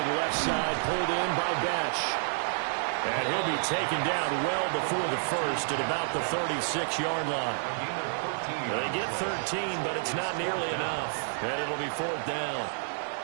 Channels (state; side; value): silent; left; digital silence